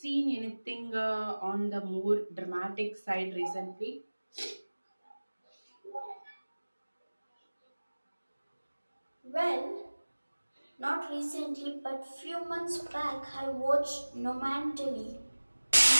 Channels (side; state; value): both; inverted; correlation -1.00